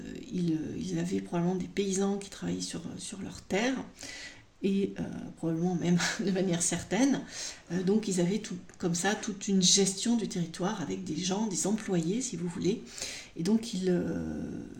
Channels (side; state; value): both; identical; correlation 1.00